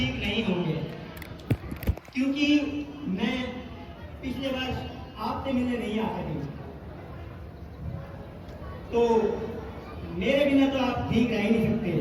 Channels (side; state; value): both; identical; correlation 1.00